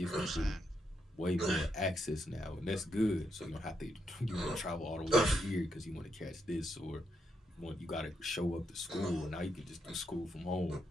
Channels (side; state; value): both; normal; correlation 0.80